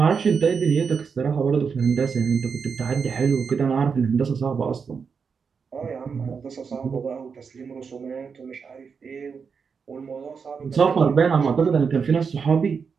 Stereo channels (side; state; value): left; quieter; 5.8 dB